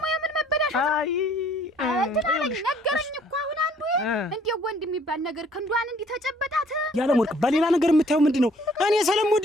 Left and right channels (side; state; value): both; normal; correlation 0.60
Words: የምን መበላሻት? አይ እንትናለኝ ነገረኝ እኮ አሁን አንዱ እንዴ ወንድ የሚባል ነገር ክንዷን እንዲህ ተጨበጣት ያለ ወርቅ በሌላ ነገር የምታየው ምንድነው? እኔ